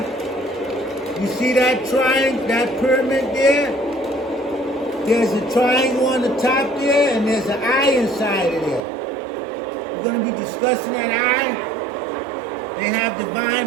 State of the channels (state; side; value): drops out; left; at 8.8 s